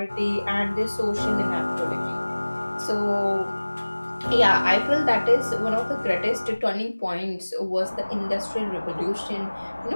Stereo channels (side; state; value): both; inverted; correlation -1.00